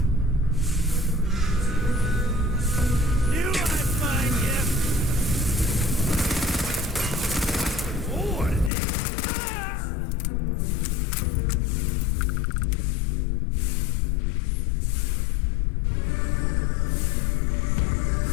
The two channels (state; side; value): drops out; right; at 8.7 s